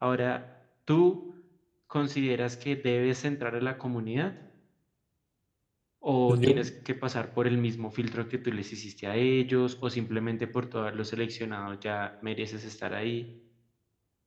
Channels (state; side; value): identical; both; correlation 1.00